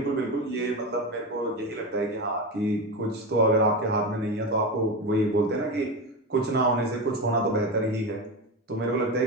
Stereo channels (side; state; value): both; normal; correlation 0.19